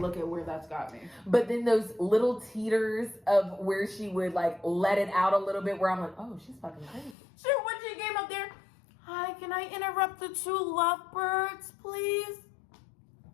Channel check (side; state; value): right; drops out; at 7.2 s